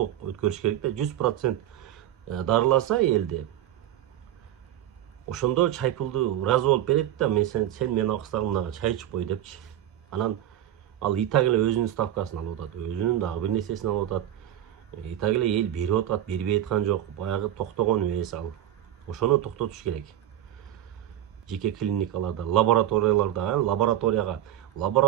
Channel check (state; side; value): quieter; left; 12.1 dB